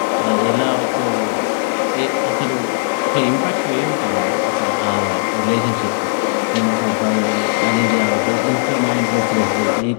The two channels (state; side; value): silent; right; digital silence